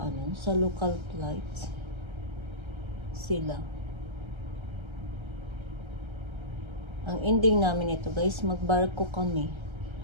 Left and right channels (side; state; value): left; late; 1.3 ms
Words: sa local flights sila. Ang ending namin ito guys, magbarko kami.